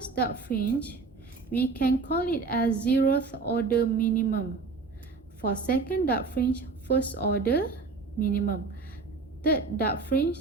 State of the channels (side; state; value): left; quieter; 4.2 dB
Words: dark fringe, we can call it as 0th order minimum. For second dark fringe, first order minimum. Third dark fringe,